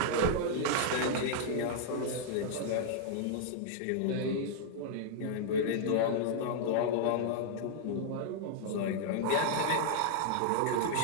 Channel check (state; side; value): different; both; correlation -0.01